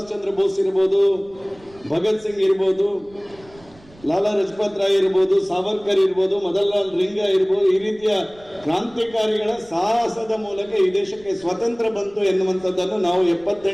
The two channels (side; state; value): right; noise; rumble, 26 dB below the sound